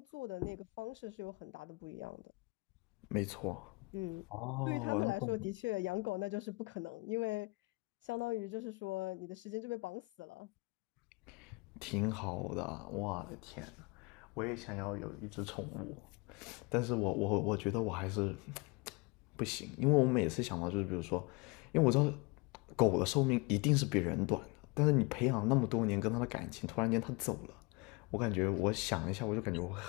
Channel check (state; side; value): quieter; right; 26.8 dB